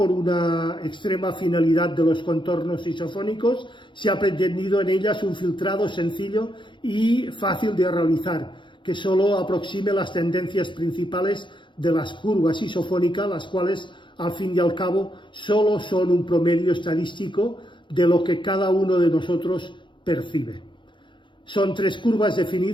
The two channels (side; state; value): right; late; 0.23 ms